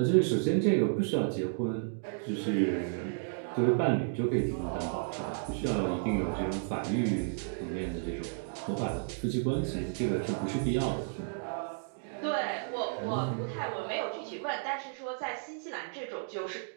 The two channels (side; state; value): left; silent; digital silence